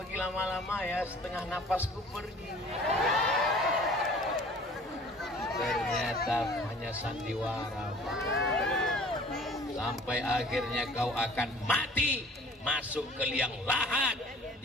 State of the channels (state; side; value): normal; both; correlation 0.49